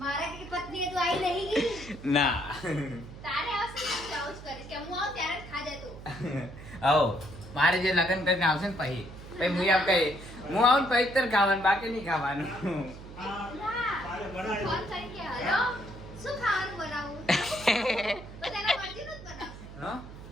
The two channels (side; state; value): right; noise; hum, 14 dB below the sound